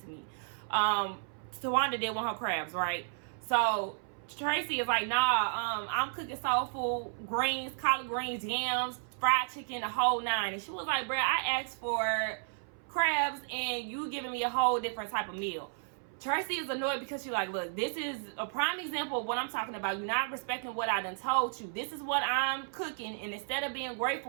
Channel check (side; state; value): left; silent; 56 dB below the other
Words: to me. Towanda did want her crabs, right? So Traci is like, nah, I'm cooking soul food, greens, collard greens, yams, fried chicken, the whole nine. And she was like, bruh, I asked for crabs and you giving me a whole different type of meal. Traci is annoyed because she's like, look, this is a prime example of what I'm talking about. You're not respecting what I done told you. This is what I'm cooking, and instead of being